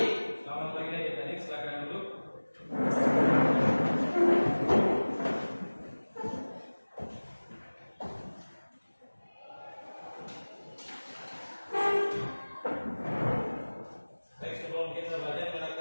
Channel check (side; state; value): both; inverted; correlation -1.00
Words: Selamat pagi adik-adik, silakan duduk. Baik, sebelum kita belajar, kita